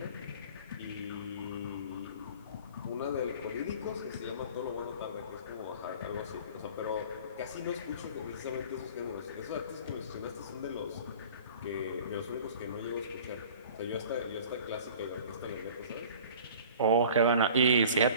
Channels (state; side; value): inverted; both; correlation -0.45